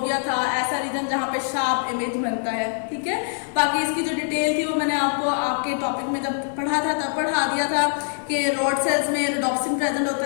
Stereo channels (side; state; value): right; silent; digital silence